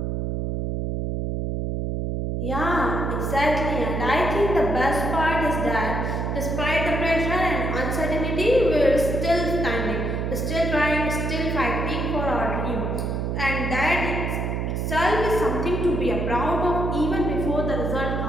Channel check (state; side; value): noise; right; hum, 1 dB below the sound